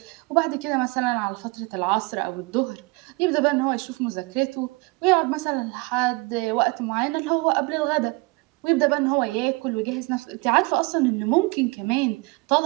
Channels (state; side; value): quieter; left; 26.3 dB